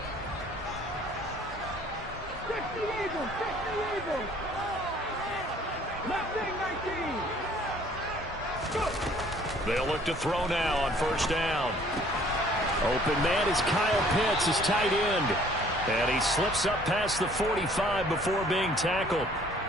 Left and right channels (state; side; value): normal; both; correlation 0.57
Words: 50 Eagles. 19. They'll look to throw now on 1st down. Open man is Kyle Pitts, his tight end. And he slips up past the 45 before being tackled.